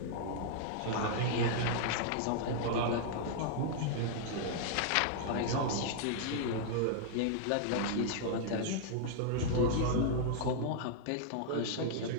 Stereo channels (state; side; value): different; both; correlation -0.01